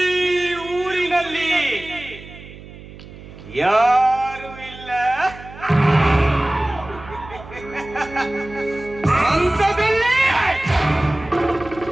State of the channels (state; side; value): noise; right; hum, 17 dB below the sound